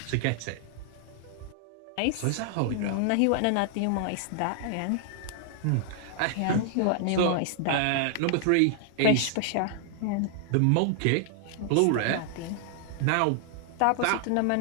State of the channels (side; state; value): both; different; correlation -0.01